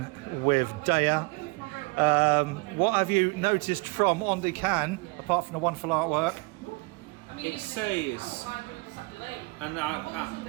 with Daya. What have you noticed from on the can, apart from the wonderful artwork? It says, and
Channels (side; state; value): left; quieter; 28.1 dB